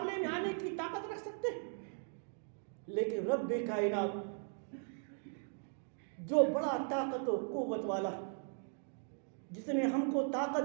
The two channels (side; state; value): left; silent; 52 dB below the other